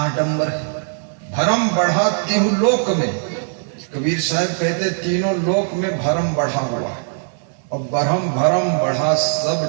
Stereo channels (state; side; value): silent; left; 66 dB below the other